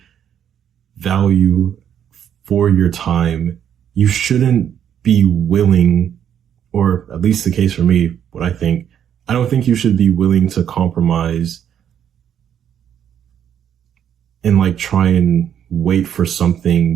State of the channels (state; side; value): quieter; left; 9.3 dB